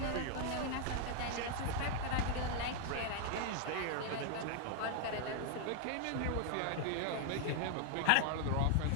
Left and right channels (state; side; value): different; both; correlation 0.00